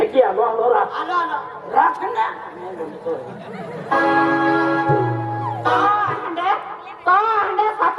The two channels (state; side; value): identical; both; correlation 1.00